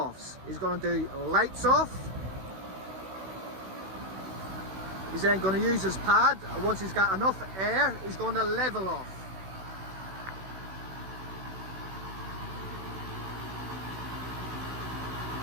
He's going to do lights off. He's then going to use his pad, and once he's got enough air, he's going to level off.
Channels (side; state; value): left; late; 16 ms